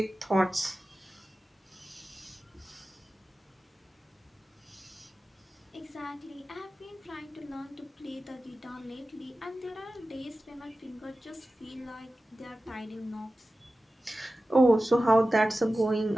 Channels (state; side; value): normal; both; correlation 0.95